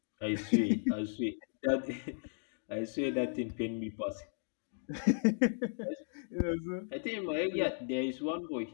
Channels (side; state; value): right; silent; digital silence